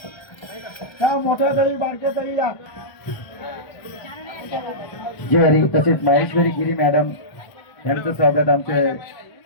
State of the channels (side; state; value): right; late; 1.3 ms